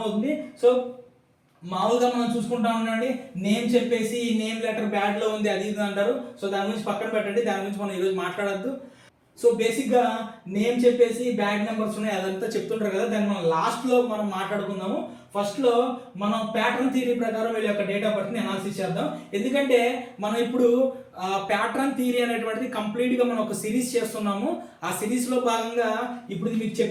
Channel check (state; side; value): identical; both; correlation 1.00